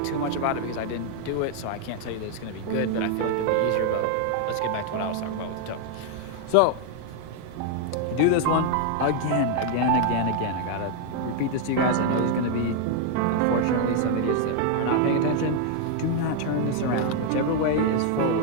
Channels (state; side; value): different; both; correlation 0.00